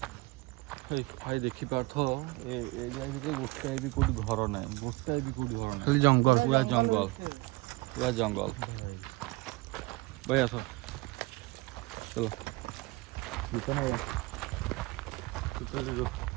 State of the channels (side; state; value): left; quieter; 23.8 dB